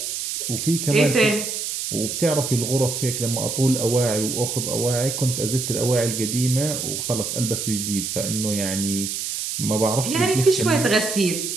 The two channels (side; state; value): right; noise; hiss, 4 dB below the sound